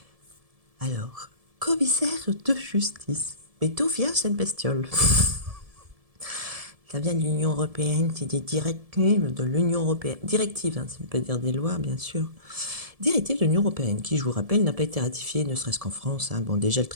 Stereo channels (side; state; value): left; late; 1.7 ms